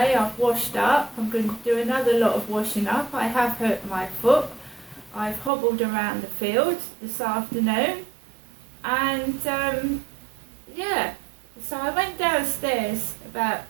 I've washed up, I'm going to do another lot of washing up. I have hurt my foot. I've hobbled around the fields this afternoon and yeah, so I went downstairs about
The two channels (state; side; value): drops out; left; at 5.5 s